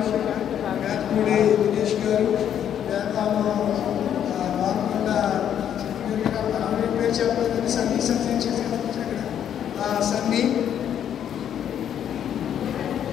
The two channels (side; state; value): right; quieter; 9.6 dB